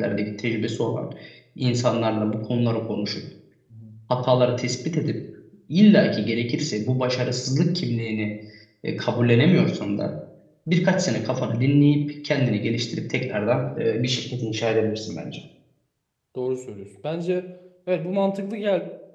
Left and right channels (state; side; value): identical; both; correlation 1.00